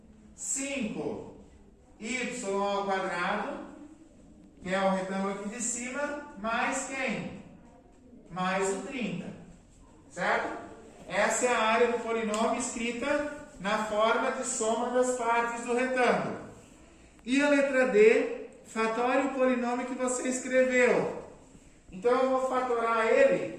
5y ao quadrado, que é o retângulo aqui de cima, mais quem? Mais o 30, certo? Essa é a área do polinômio escrita na forma de soma das partes do retângulo. E a letra D, fatore o polinômio que você escreveu. Então, eu vou fatorar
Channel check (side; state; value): both; identical; correlation 1.00